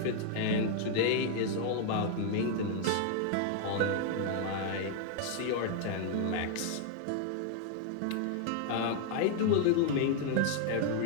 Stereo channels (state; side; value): different; both; correlation 0.00